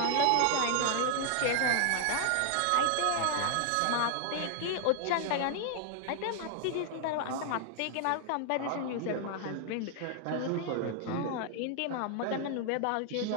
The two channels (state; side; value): different; both; correlation 0.00